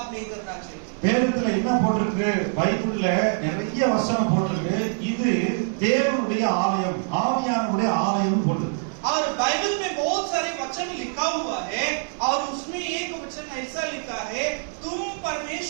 नहीं करना चाहिए। வேதத்துல என்ன போட்டிருக்கு? பைபிள்ல நிறைய வசனம் போட்டிருக்கு. இது தேவனுடைய ஆலயம், ஆவியானவருடைய ஆலயம் போட்டிருக்கு. और बाइबल में बहुत सारे वचन लिखा हुआ है और उसमें एक वचन ऐसा लिखा है तुम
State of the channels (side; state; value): left; silent; 62 dB below the other